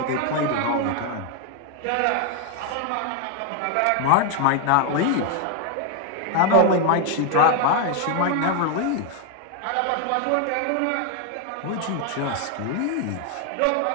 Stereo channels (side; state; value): both; different; correlation 0.00